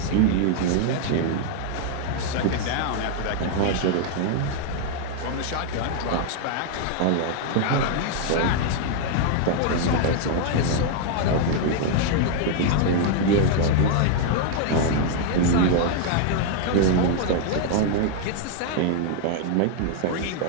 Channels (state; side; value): different; both; correlation 0.00